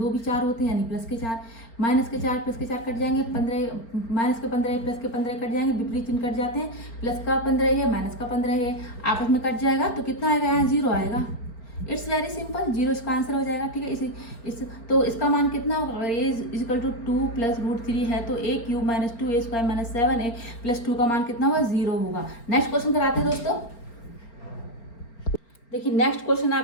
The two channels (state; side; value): late; right; 4.4 ms